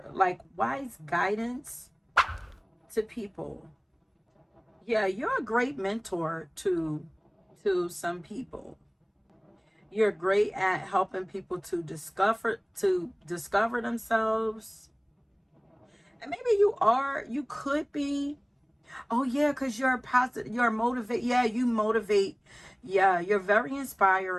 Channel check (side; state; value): both; identical; correlation 1.00